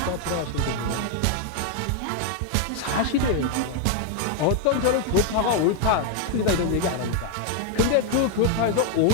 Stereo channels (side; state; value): both; different; correlation 0.01